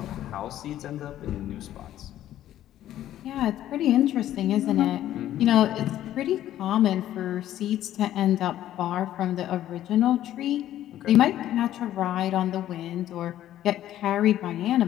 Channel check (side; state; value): right; quieter; 12.5 dB